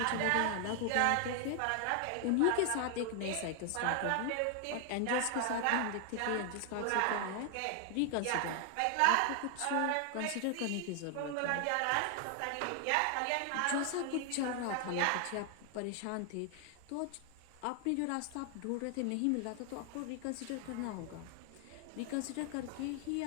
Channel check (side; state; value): both; different; correlation 0.00